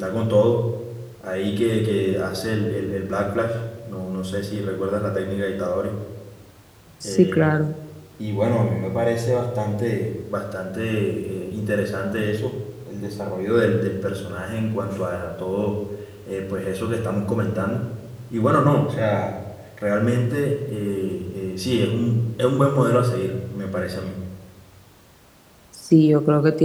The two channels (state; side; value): identical; both; correlation 1.00